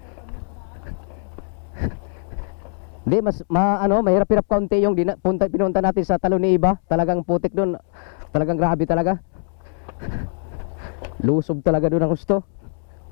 Hindi, mahirap-hirap kaunti yung pinunta natin sa Talon ni Iba. Talagang putik doon. Talagang grabe talaga. Lusob talaga doon ang gusto.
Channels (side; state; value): right; silent; 64 dB below the other